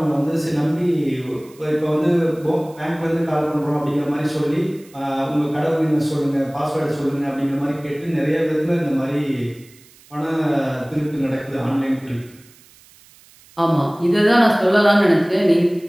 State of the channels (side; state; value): right; noise; hiss, 26 dB below the sound